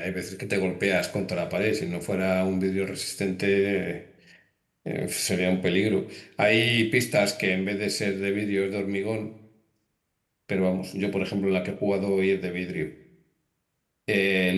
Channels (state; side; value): identical; both; correlation 1.00